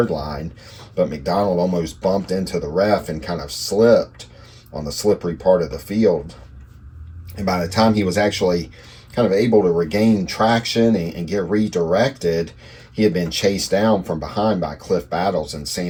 line, but McDonald almost bumped into the ref and kind of slipped on the slippery part of the field. And by the time he was actually kind of able to regain traction and get redirected, he had been chased down from behind by Cliff Battles and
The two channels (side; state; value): both; identical; correlation 1.00